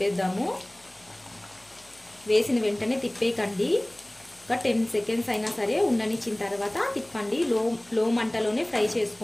వేసిన వెంటనే తిప్పేయకండి. ఒక 10 సెకండ్స్ అయినా సరే ఉండనిచ్చిన తర్వాత తిప్పండి. లో మంటలోనే ఫ్రై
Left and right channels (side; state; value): left; noise; hum, 30 dB below the sound